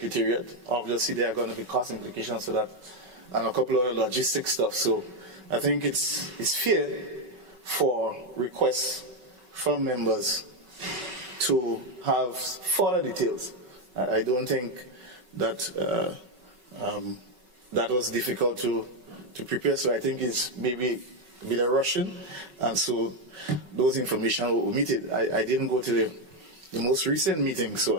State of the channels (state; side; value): late; left; 5.3 ms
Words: Obviously, there are going to be cost implications for that and a couple of other logistic stuff. So I think it's fair for requests from members to have further details. I don't think that that was difficult to prepare, so I think it's maybe a bit of rushing, and so those information were omitted. I didn't go to the most recent meeting, so